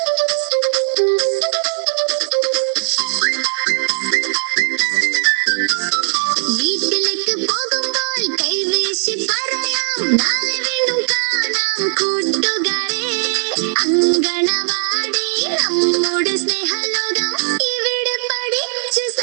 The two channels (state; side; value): silent; left; digital silence